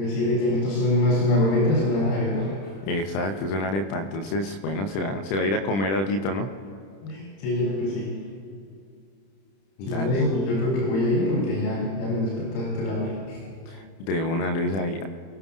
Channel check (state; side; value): late; right; 31 ms